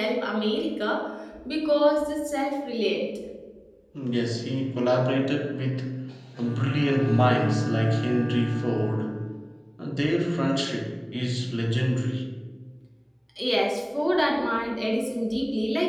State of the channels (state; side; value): identical; both; correlation 1.00